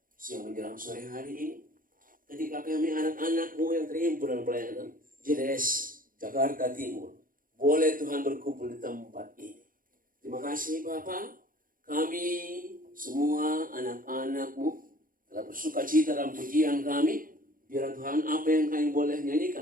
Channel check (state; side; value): late; left; 0.40 ms